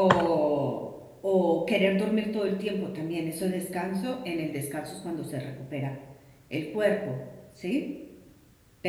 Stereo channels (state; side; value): identical; both; correlation 1.00